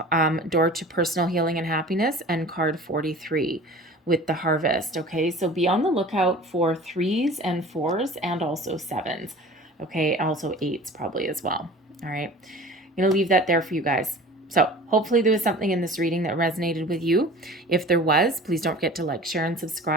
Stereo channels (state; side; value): normal; both; correlation 0.42